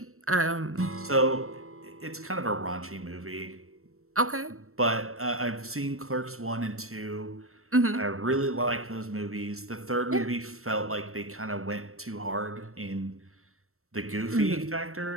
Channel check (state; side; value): late; left; 0.63 ms